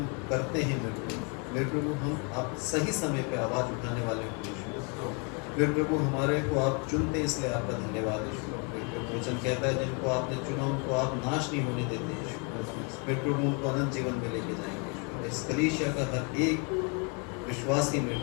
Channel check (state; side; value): quieter; right; 34.8 dB